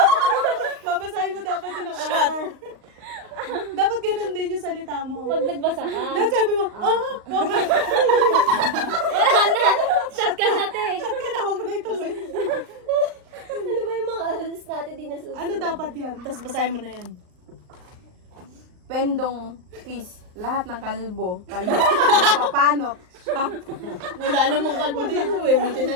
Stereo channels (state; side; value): late; left; 39 ms